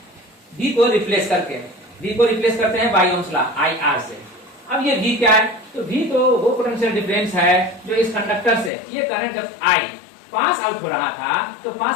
V को रिप्लेस करके। V को रिप्लेस करते हैं by Ohm's law I R से। अब ये V क्या है, तो V तो वो पोटेंशियल डिफरेंस है जो इस कंडक्टर से ये करंट जब I पास आउट हो रहा था तो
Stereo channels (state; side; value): drops out; right; at 8.7 s